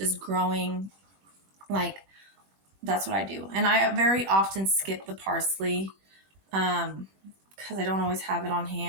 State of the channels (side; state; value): left; late; 21 ms